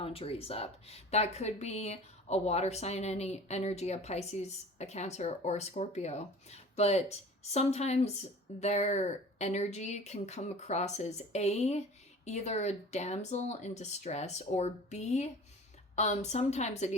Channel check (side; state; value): both; normal; correlation 0.42